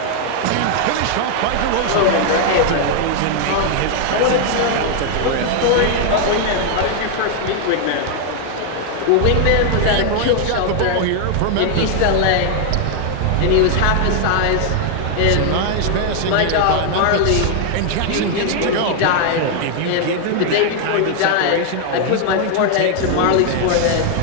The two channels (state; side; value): different; both; correlation 0.00